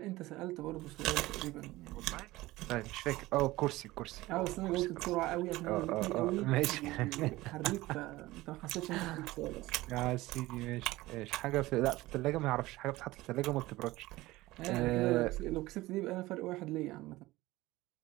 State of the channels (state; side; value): quieter; left; 18.6 dB